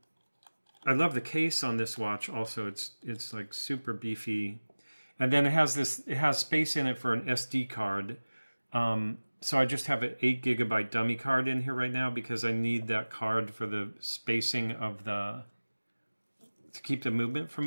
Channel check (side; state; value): both; inverted; correlation -1.00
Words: I love the case on this watch also. It's like super beefy. And then it has space in it for an SD card. So I just have an 8 GB dummy card in here right now because I need that card for the spacing of to keep the movement from